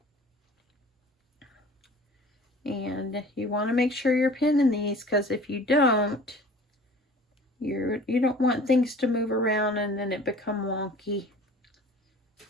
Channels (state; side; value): normal; both; correlation 0.46